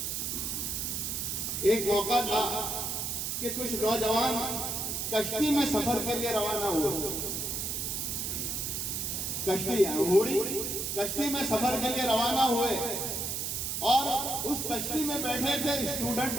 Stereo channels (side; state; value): right; noise; hiss, 2 dB below the sound